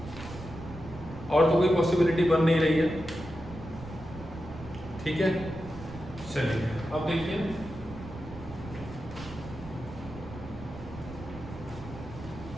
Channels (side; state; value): right; noise; rumble, 13 dB below the sound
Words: और तो कोई पॉसिबिलिटी बन नहीं रही है, ठीक है। चलिए अब देखिए,